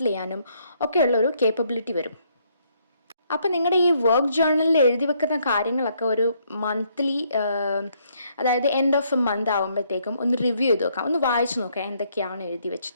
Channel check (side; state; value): both; inverted; correlation -0.70